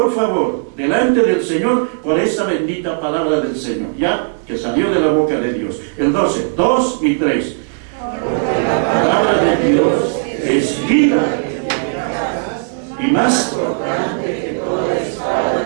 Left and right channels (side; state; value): left; silent; digital silence